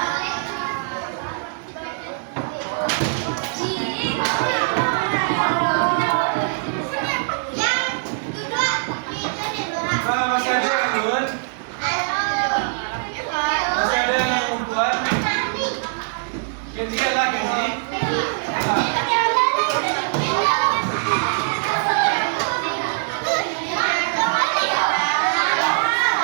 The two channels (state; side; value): silent; left; digital silence